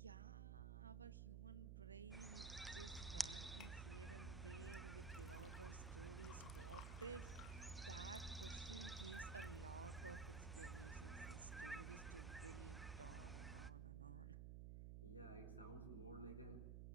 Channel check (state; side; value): noise; right; hum, 2 dB below the sound